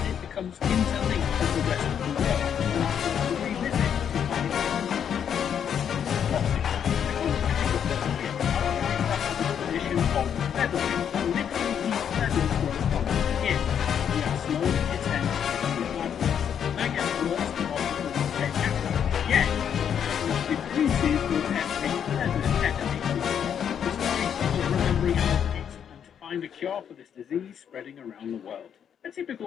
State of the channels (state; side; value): quieter; right; 8.4 dB